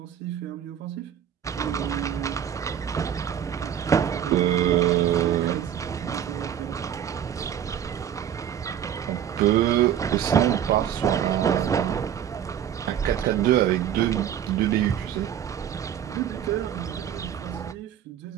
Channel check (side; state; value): left; quieter; 9.6 dB